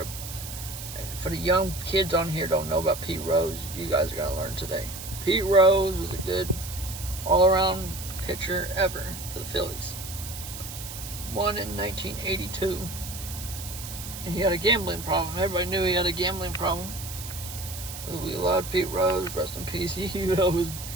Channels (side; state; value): right; noise; hiss, 10 dB below the sound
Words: For the young kids on here don't know about Pete Rose, you guys are gonna learn today. Pete Rose was a good all-around pitcher ever for the Phillies. Won in 1982, and he had a gambling problem. Everybody knew he had a gambling problem. We loved Pete Rose, rest in peace. He would always